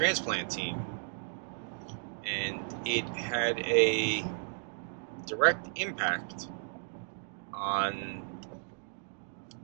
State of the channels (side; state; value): left; silent; 55 dB below the other